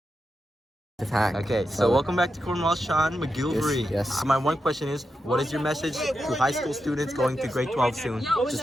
Okay, so welcome back to Cornwall, Sean McGilvery. Yes. My one question is, what is your message to high school students going to grade 12 soon?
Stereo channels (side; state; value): both; normal; correlation 0.87